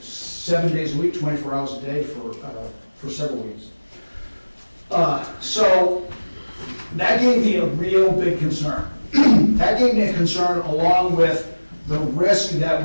days a week, 24 hours a day for several weeks. So that gave me a real big concern. That gave me a concern along with the risk that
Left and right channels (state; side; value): inverted; both; correlation -1.00